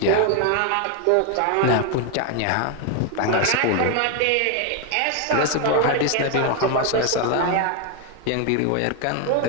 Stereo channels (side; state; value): both; different; correlation 0.01